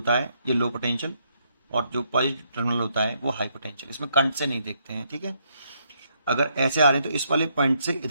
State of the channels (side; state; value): both; inverted; correlation -0.74